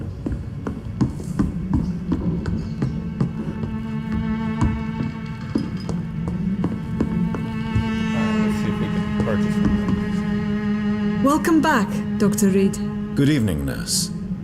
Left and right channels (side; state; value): both; identical; correlation 1.00